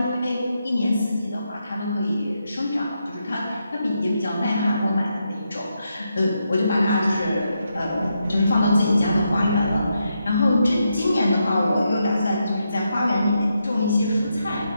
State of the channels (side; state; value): both; inverted; correlation -0.83